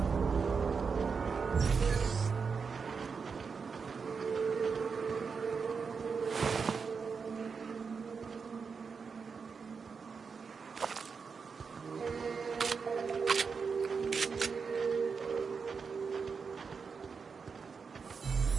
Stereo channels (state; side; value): quieter; left; 5.5 dB